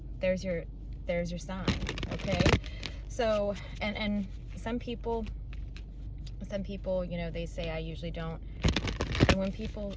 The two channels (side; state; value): both; identical; correlation 1.00